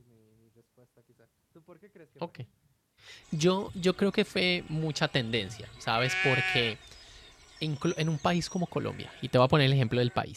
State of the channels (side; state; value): both; identical; correlation 1.00